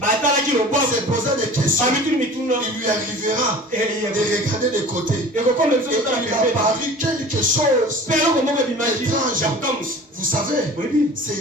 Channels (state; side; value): normal; both; correlation 0.41